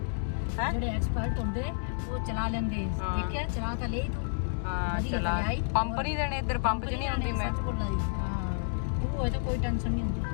ਹੈ ਜਿਹੜੇ ਐਕਸਪਰਟ ਹੁੰਦੇ ਉਹ ਚਲਾ ਲੈਂਦੇ ਦੇਖਿਆ ਚਲਾ ਤਾਂ ਲਈ ਤੂੰ ਹਾਂ ਚਲਾ। ਪੰਪ ਨਹੀਂ ਦੇਣੇ ਇੱਧਰ, ਪੰਪ 'ਚ ਨਹੀਂ ਹੁੰਦੀ ਮੈਂ। ਸੱਚ ਬੋਲਣਾ ਜੀ ਹਾਂ ਉਹ ਹੋਏ ਤਾਂ ਕੋਈ ਟੈਨਸ਼ਨ ਨਹੀਂ ਹੁੰਦੀ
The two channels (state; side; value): silent; right; digital silence